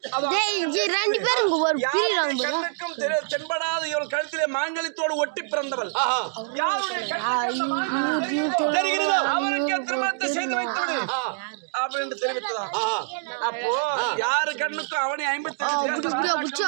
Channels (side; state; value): left; silent; digital silence